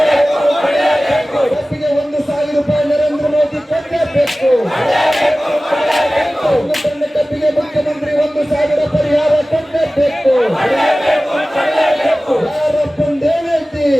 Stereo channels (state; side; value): normal; both; correlation 0.97